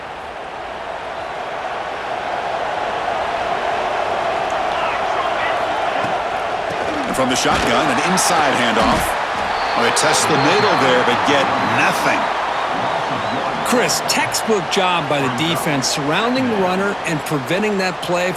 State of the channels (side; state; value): both; identical; correlation 1.00